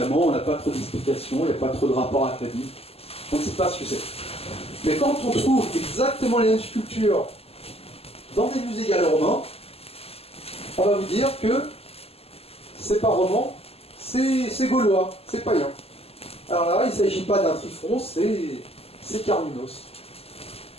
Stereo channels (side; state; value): right; late; 0.29 ms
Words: on n'a pas trop d'explications, il n'y a pas trop de rapport à la Bible, on ne sait pas ce que c'est. Mais quand on trouve exactement les mêmes sculptures dans des musées gallo-romains, on va vous dire que c'est pas roman, c'est gaulois, c'est païen. Alors là, il ne s'agit pas d'un trifron, c'est Carminos.